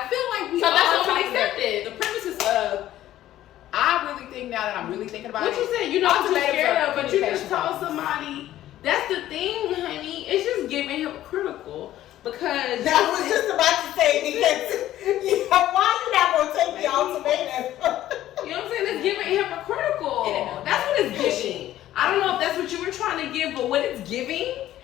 feel like we So all that's what we talking about accepted. the premises of. I really think now that I'm really thinking about What it. you said, you know what you're ultimatums scared are of, but you communication just told problems. somebody. That's the thing, honey. It's just giving hypocritical because I was just about to say because why you not gonna take the ultimatum? you know what I'm saying. It's giving hypocritical. That's what it's giving. I don't know if that's what you were trying to give, but what it's giving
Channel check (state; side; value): quieter; right; 13.4 dB